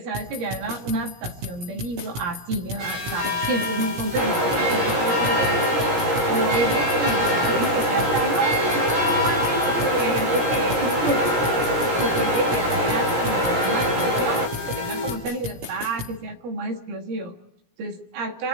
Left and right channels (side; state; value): left; late; 17 ms